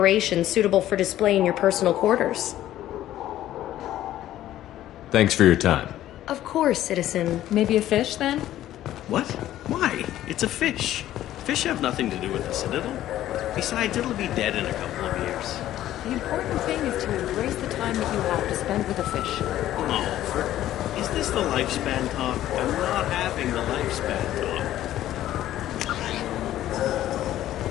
suitable for display in your personal quarters. Thanks for your time. Of course, citizen. Maybe a fish, then? What? Why? It's a fish. Fish have nothing to do with the Citadel. Besides, it'll be dead in a couple of years. The important thing is to embrace the time that you have to spend with a fish. Oh, is this the lifespan talk? I'm not having the lifespan talk.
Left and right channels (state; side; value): quieter; right; 13.2 dB